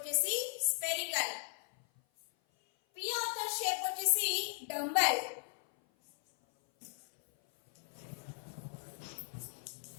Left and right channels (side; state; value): right; silent; 53 dB below the other